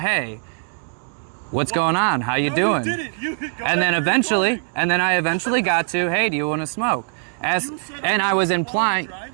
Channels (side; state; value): left; silent; 57 dB below the other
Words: what's going on? How you doing? And then I eventually got to, hey, do you want to smoke? And I was implying,